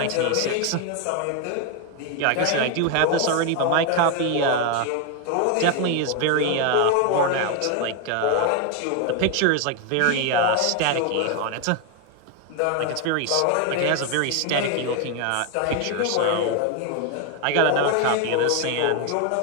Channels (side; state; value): both; different; correlation 0.01